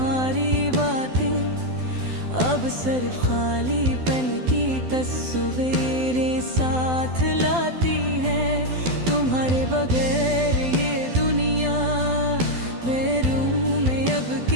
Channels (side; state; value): left; late; 12 ms